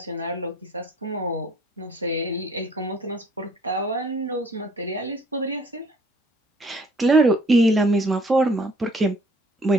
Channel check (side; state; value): both; normal; correlation 0.58